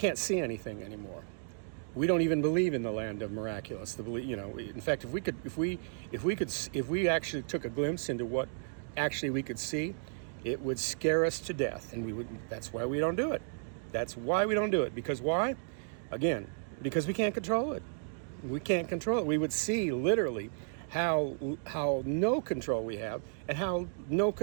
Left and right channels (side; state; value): left; silent; digital silence